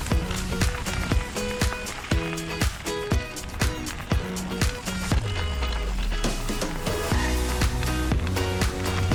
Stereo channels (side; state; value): both; identical; correlation 1.00